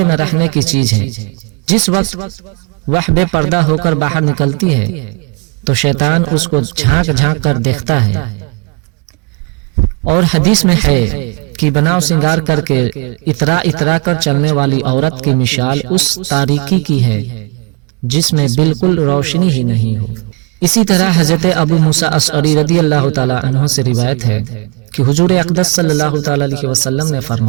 میں رہنے کی چیز ہے۔ جس وقت وہ بے پردہ ہو کر باہر نکلتی ہے تو شیطان اس کو جھانک جھانک کر دیکھتا ہے، اور حدیث میں ہے کہ بناؤ سنگار کر کے اترا کر چلنے والی عورت کی مثال اس تاریکی کی ہے جس میں بالکل روشنی ہی نہیں ہو۔ اسی طرح حضرت ابو موسیٰ اشعری رضی اللہ تعالی عنہ سے روایت ہے کہ حضور اقدس صلی اللہ تعالی علیہ وسلم نے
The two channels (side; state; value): left; quieter; 31.1 dB